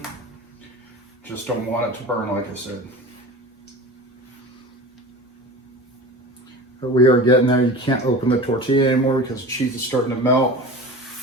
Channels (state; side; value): normal; both; correlation 0.34